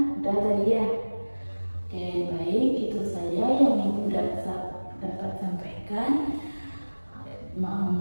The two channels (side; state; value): both; inverted; correlation -1.00